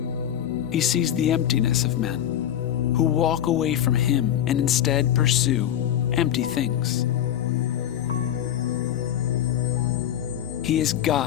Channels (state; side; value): quieter; right; 10.8 dB